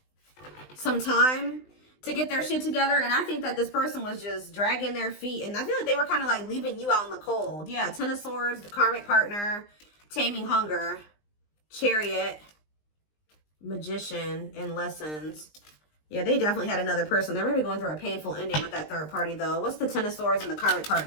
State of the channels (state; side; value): late; right; 20 ms